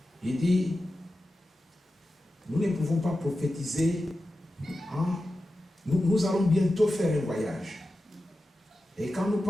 Il dit, nous ne pouvons pas prophétiser. Hein? Nous allons bientôt faire un voyage. Et quand nous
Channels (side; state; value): both; normal; correlation 0.93